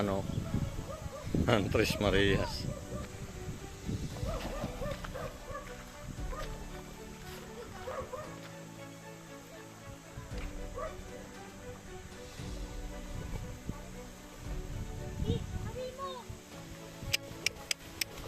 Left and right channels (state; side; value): identical; both; correlation 1.00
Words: oh. Tres Marias.